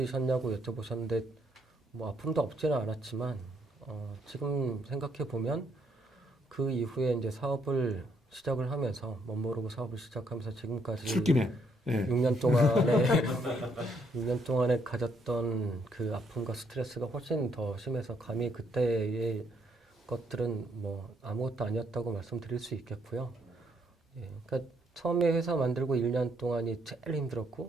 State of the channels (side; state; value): both; normal; correlation 0.71